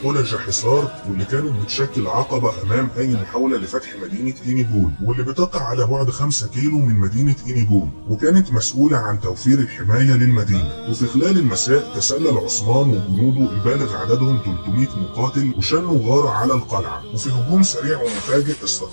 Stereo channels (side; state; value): both; inverted; correlation -1.00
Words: قلج حصار، واللي كانت بتشكل عقبة أمام أي محاولة لفتح مدينة إينيجول، واللي بتقع على بعد 5 كيلو من مدينة إينيجول، وكانت مسؤولة عن توفير الحماية للمدينة. وفي خلال المساء تسلل عثمان وجنوده البالغ عددهم 300 مقاتل وشنوا غارة على القلعة، وفي هجوم سريع ومفاجئ